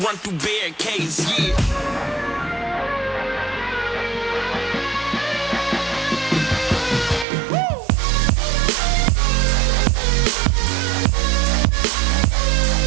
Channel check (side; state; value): left; drops out; at 7.2 s